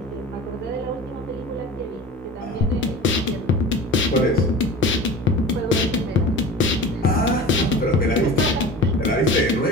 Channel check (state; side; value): normal; both; correlation 0.36